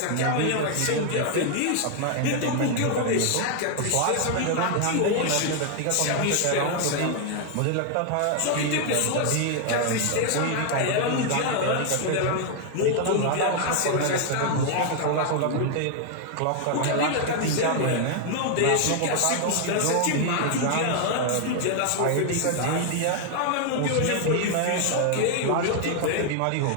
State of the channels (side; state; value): both; different; correlation 0.00